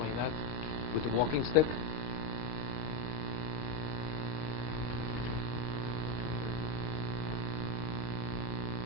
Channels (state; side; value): late; right; 26 ms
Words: that? With the walking stick?